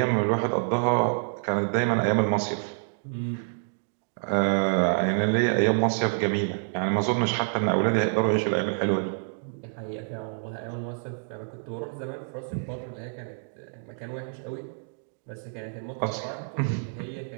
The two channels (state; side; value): silent; left; digital silence